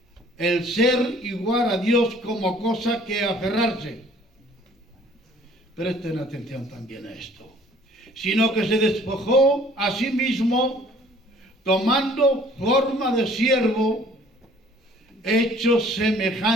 el ser igual a Dios como cosa que aferrarse. Presten atención también a esto. Sino que se despojó a sí mismo, tomando forma de siervo, hecho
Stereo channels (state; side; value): normal; both; correlation 0.55